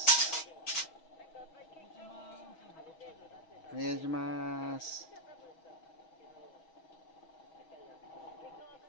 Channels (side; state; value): right; late; 6.3 ms